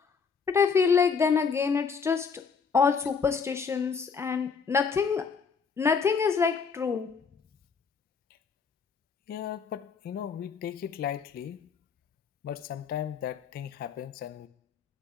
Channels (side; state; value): right; quieter; 5.8 dB